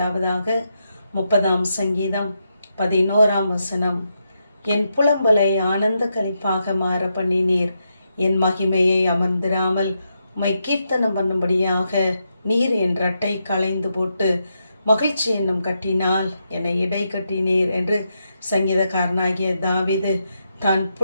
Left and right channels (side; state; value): both; inverted; correlation -0.83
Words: 30ஆம் சங்கீதம் 11ஆம் வசனம். என் புலம்பலை ஆனந்த களிப்பாக மாற பண்ணினீர், என் மகிமையை அமர்ந்திராமல் உம்மை கீர்த்தனம் பண்ணும்படியாக நீர் என் இரட்டை களைந்து போட்டு மகிழ்ச்சி என்னும் கட்டினால் என்னை இடை கட்டினீர் என்று சங்கீதக்காரனாகிய தாவீது தான்